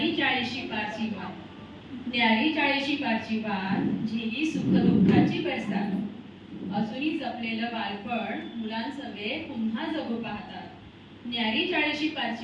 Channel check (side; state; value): both; identical; correlation 1.00